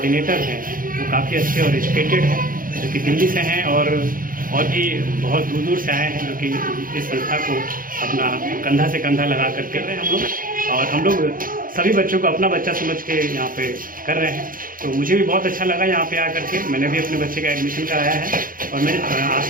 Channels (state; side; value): late; left; 0.41 ms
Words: हैं वो काफ़ी अच्छे और एजुकेटेड हैं, जो कि दिल्ली से हैं और भी बहुत दूर दूर से आए हैं, जो कि इस संस्था को अपना कंधा से कंधा लगा कर कर रहे हैं हम लोग। और हम लोग सभी बच्चों को अपना बच्चा समझ के यहाँ पे कर रहे हैं, तो मुझे भी बहुत अच्छा लगा यहाँ पे आकर के। मैंने भी अपने बच्चे का एडमिशन कराया है और मैं